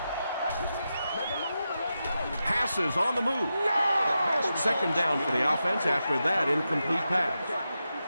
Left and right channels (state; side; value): inverted; both; correlation -0.89